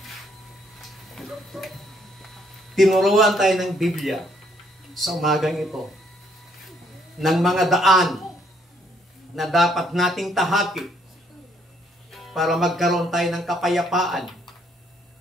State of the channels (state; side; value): normal; both; correlation 0.68